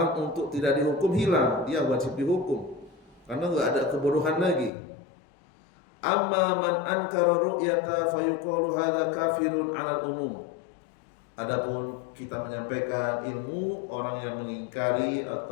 untuk tidak dihukum, hilang, dia wajib dihukum karena nggak ada kebodohan lagi. Amma man ankara ru'yata fayuqalu hadza kafirun 'alal umum. Adapun kita menyampaikan ilmu, orang yang mengingkari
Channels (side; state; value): right; drops out; at 4.7 s